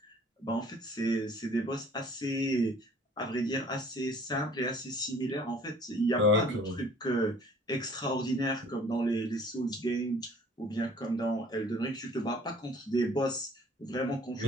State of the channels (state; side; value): normal; both; correlation 0.53